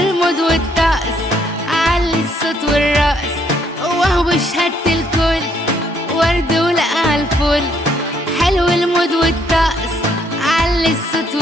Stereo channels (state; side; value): normal; both; correlation 0.69